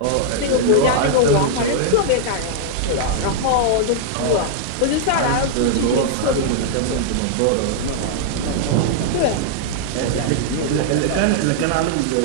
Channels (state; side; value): different; both; correlation -0.01